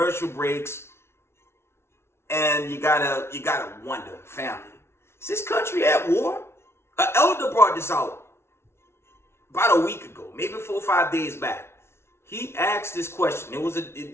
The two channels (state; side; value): late; right; 0.12 ms